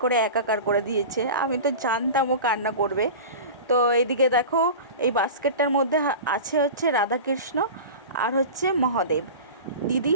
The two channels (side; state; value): both; inverted; correlation -0.32